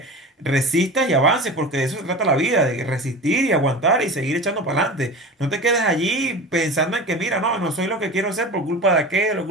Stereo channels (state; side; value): normal; both; correlation 0.32